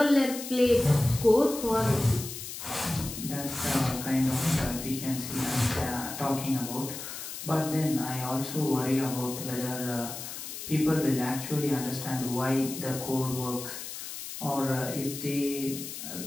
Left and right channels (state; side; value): noise; left; hiss, 9 dB below the sound